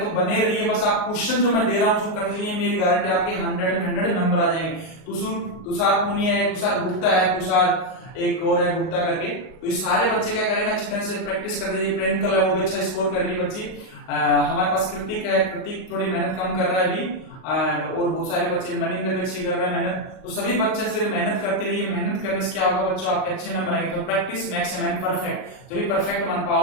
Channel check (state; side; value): late; right; 38 ms